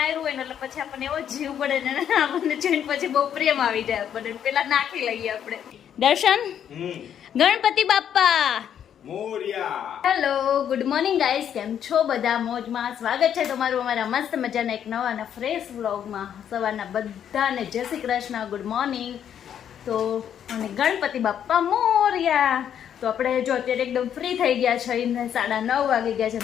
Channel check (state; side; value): quieter; right; 9.2 dB